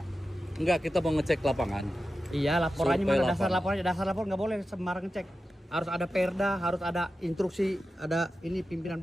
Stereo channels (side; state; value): both; normal; correlation 0.92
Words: enggak, kita mau ngecek lapangan. Iya, laporannya Survei mana? Dasar lapangan. laporannya, dasar lapor nggak boleh sembarang ngecek. Harus ada perda, harus ada instruksi, ada ini pimpinan